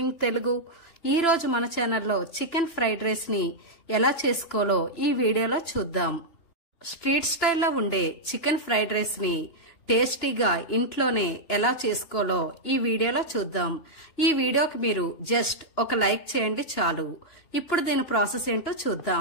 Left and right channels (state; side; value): late; right; 2.9 ms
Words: Telugu. ఈ రోజు మన ఛానల్లో చికెన్ ఫ్రైడ్ రైస్ ని ఎలా చేసుకోవాలో ఈ వీడియోలో చూద్దాం. స్ట్రీట్ స్టైల్లో ఉండే చికెన్ ఫ్రైడ్ రైస్ ని టేస్టీగా ఇంట్లోనే ఎలా చేసుకోవాలో ఈ వీడియోలో చూద్దాం. ఈ వీడియోకి మీరు జస్ట్ ఒక లైక్ చేయండి చాలు. ఇప్పుడు దీని ప్రాసెస్ ఏంటో